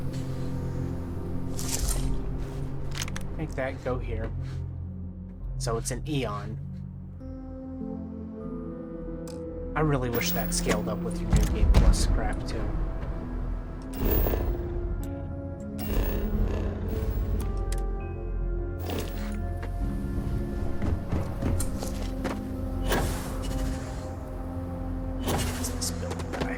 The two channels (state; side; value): identical; both; correlation 1.00